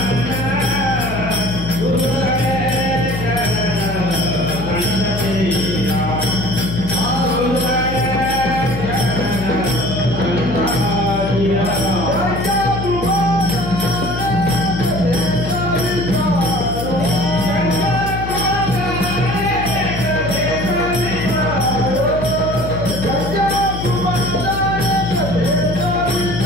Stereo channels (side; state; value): left; noise; hum, 6 dB below the sound